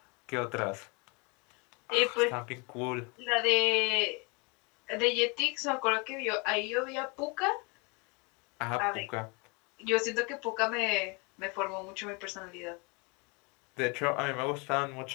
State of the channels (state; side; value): quieter; right; 30.4 dB